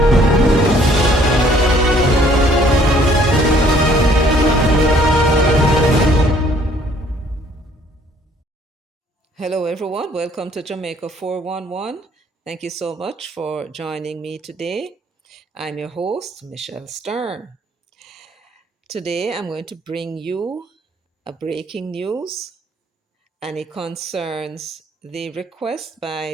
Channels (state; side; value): normal; both; correlation 0.61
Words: everyone. Welcome to Jamaica 411. Thank you so much for joining me today. I'm your host, Michelle Stern. Today, I'm going to bring you a breaking news, and it concerns the request